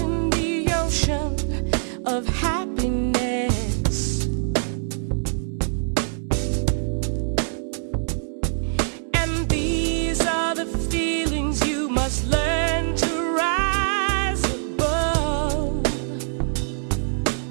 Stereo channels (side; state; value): left; silent; digital silence